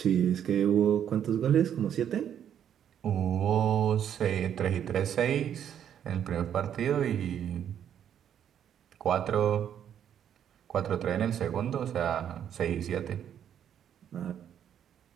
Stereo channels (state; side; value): quieter; left; 9.4 dB